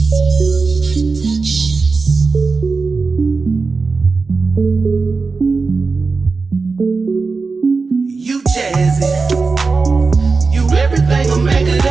jazzy. You everything a man could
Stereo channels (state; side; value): quieter; left; 4.3 dB